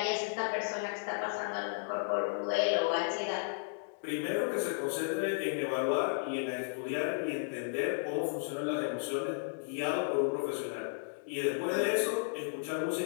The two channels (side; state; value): right; silent; 55 dB below the other